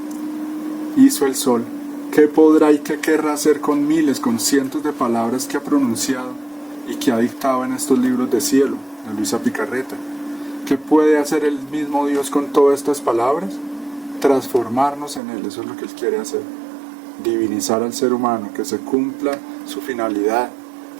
hizo el sol, ¿qué podrá y qué querrá hacer con miles, con cientos de palabras que ha pronunciado y que ha dictado en estos libros de cielo, de Luisa Picarreta? ¿Qué puede hacer el mismo Dios con todas estas palabras? Transformarnos en Él, eso es lo que Él quiere hacer. Divinizar al ser humano, que se cumpla su finalidad,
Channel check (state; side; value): drops out; left; at 15.2 s